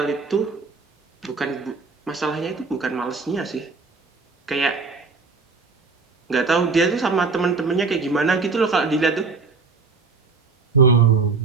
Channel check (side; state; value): left; quieter; 4.4 dB